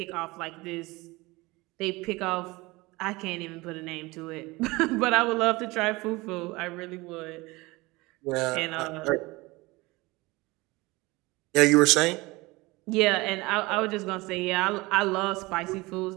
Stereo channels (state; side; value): quieter; left; 22.4 dB